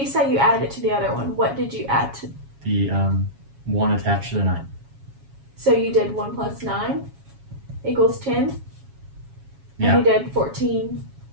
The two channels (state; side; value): late; left; 7.3 ms